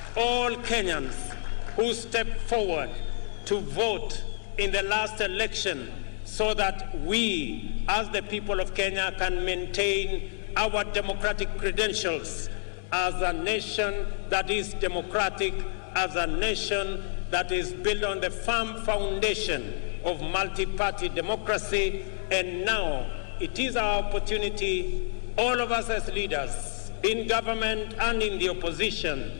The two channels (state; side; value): silent; right; 59 dB below the other